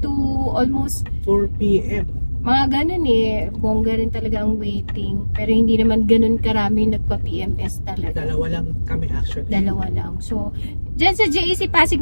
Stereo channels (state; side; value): inverted; both; correlation -1.00